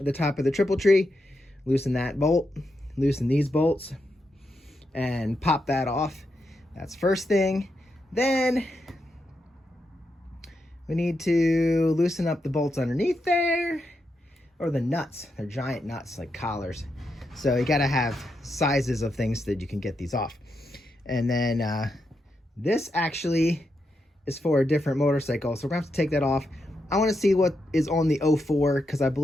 top of the triple tree, loosen that bolt, loosen these bolts, and pop that off. That's first thing. Then we need to loosen up the bolts underneath there, or the nuts. They're giant nuts, like collars. So you gotta have sizes of things that you can get these off. And then this actually is for a different motorcycle, so we're gonna have to take that off. I wanna see what is on the 04, because I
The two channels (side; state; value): both; normal; correlation 0.84